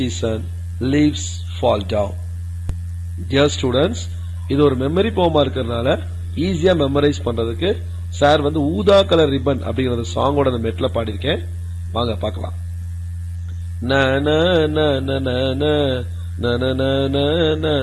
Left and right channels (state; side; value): identical; both; correlation 1.00